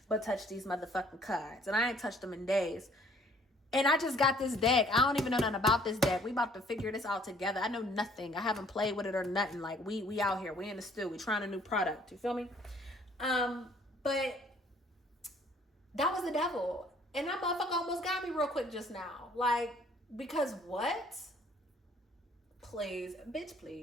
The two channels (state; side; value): normal; both; correlation 0.58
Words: but touch these motherfucking cards. And I ain't touched them in days. And I just got this deck. I don't even know nothing about this deck. We about to figure this out together. I know nothing. I haven't played with it or nothing. Like we out here. We in the stew. We trying a new product. You feel me? But that was the devil. And that motherfucker almost got me real quick just now. Like, because what? Please. Bitch,